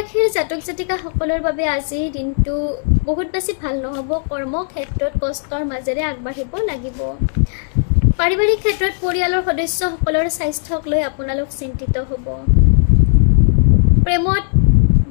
জাতক জাতিকাসকলৰ বাবে আজি দিনটো বহুত বেছি ভাল নহ'ব। কৰ্মক্ষেত্ৰত কষ্টৰ মাজেৰে আগবাঢ়িব লাগিব। পাৰিবাৰিক ক্ষেত্ৰত পৰিয়ালৰ সদস্যসকলৰ স্বাস্থ্যক লৈ আপোনালোক চিন্তিত হ'ব। প্ৰেমত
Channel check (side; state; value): right; silent; digital silence